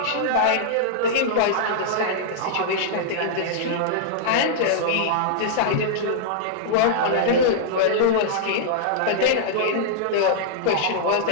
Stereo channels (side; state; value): both; different; correlation -0.02